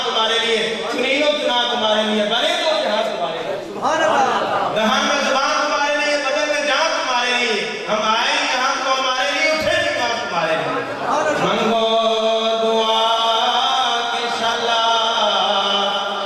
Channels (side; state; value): both; identical; correlation 1.00